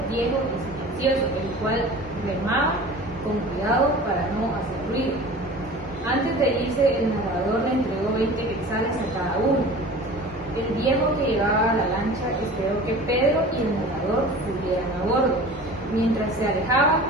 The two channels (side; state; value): both; normal; correlation 0.40